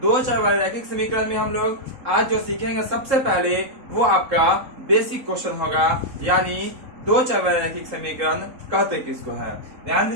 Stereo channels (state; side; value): late; left; 3.7 ms